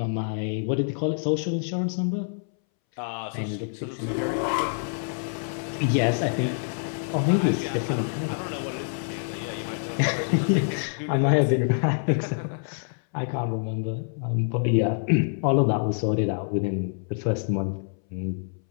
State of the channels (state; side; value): silent; right; 61 dB below the other